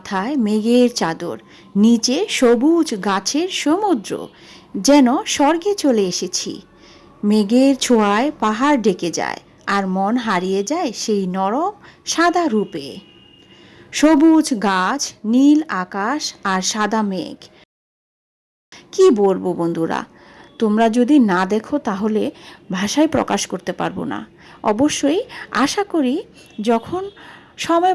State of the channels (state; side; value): identical; both; correlation 1.00